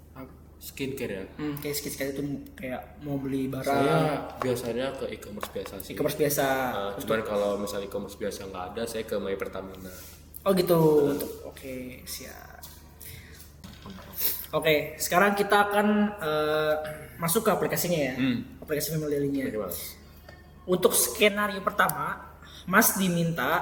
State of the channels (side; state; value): both; identical; correlation 1.00